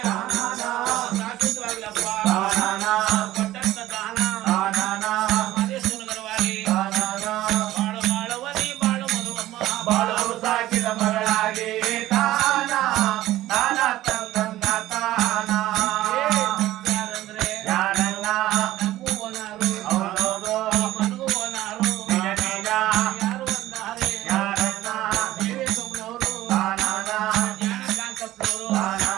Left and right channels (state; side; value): quieter; left; 15.1 dB